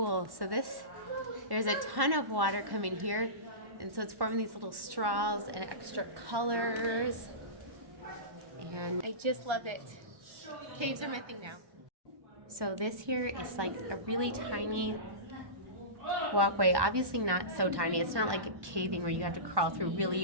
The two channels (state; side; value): late; left; 1.1 ms